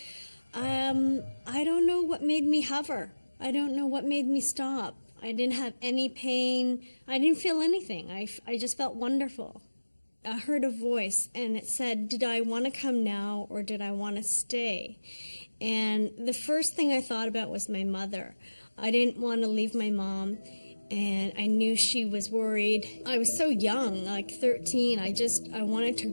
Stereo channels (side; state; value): both; inverted; correlation -1.00